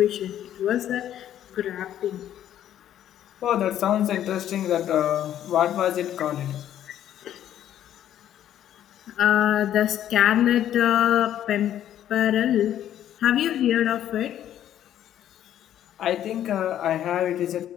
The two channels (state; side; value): quieter; right; 11.2 dB